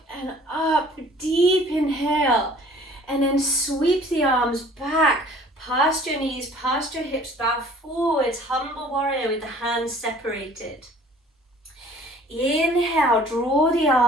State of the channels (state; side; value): normal; both; correlation 0.52